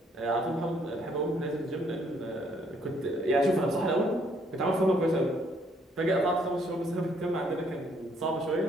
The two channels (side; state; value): both; normal; correlation 0.67